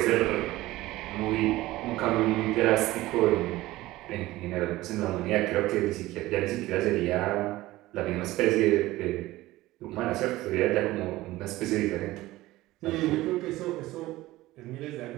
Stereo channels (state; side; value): quieter; left; 17.6 dB